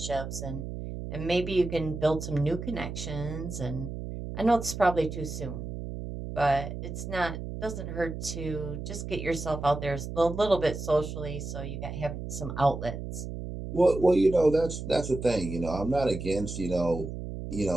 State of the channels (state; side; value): noise; right; hum, 7 dB below the sound